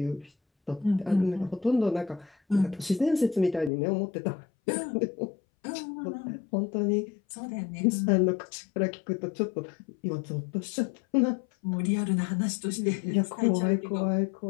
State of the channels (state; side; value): drops out; right; at 3.7 s